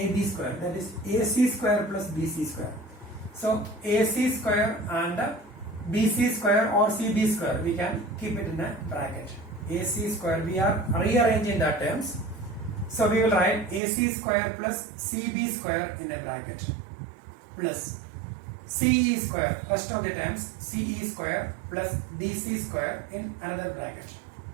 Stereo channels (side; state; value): left; drops out; at 13.8 s